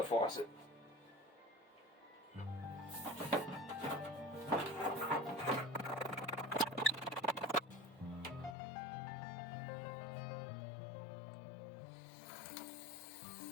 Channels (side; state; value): right; drops out; at 8.6 s